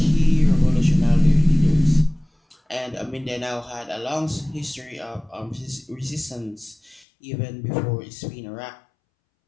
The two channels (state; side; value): drops out; right; at 7.1 s